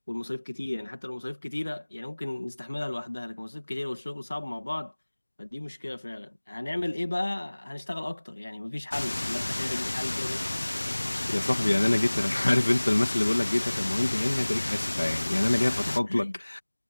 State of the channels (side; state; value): both; inverted; correlation -1.00